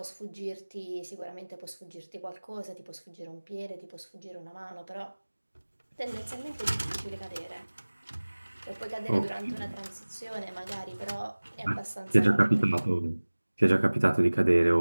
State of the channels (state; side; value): inverted; both; correlation -1.00